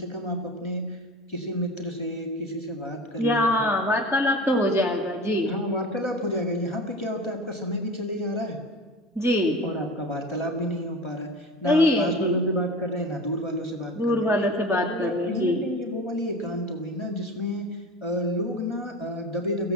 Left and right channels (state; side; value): normal; both; correlation 0.34